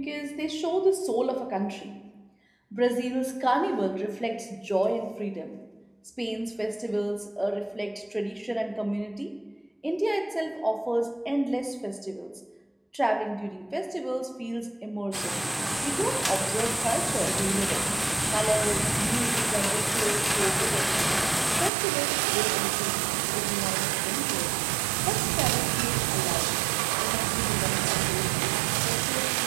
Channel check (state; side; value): drops out; left; at 21.7 s